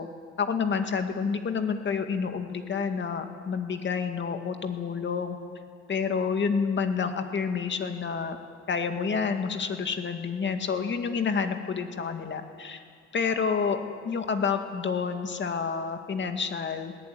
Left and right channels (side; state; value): right; quieter; 5.4 dB